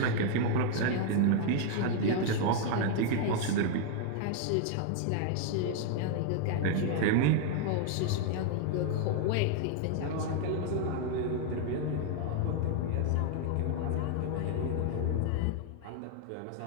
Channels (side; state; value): both; different; correlation 0.00